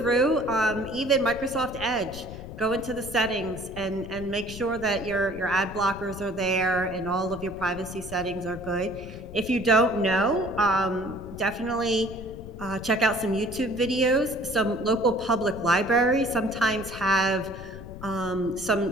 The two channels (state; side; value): noise; left; rumble, 13 dB below the sound